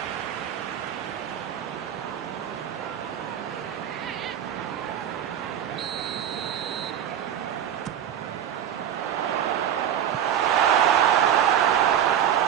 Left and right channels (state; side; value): quieter; left; 9.9 dB